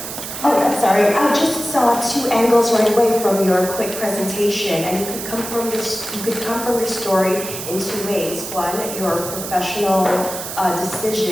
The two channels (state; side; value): noise; right; hiss, 8 dB below the sound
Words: Oh, I'm sorry. I just saw two angles right away from your quick presentation, and you could come from your story in two ways. One, your professional